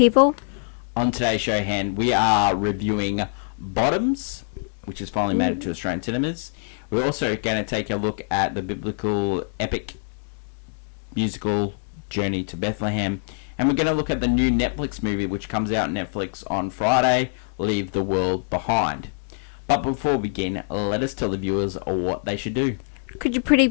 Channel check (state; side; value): silent; right; digital silence